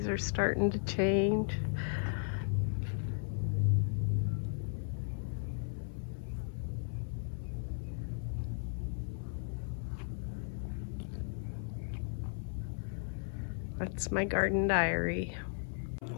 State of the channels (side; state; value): right; silent; 54 dB below the other